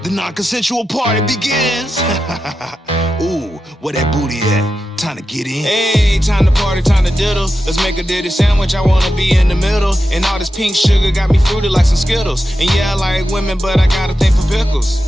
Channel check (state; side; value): normal; both; correlation 0.90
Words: The non-consensual party begins. Ooh, where that booty at? Time to get in. Hey, time to party, time to diddle. Let's make a ditty sandwich, I wanna be in the middle. And all this pink sugar got me fruity like some Skittles. And yeah, I like women, but I got a thing for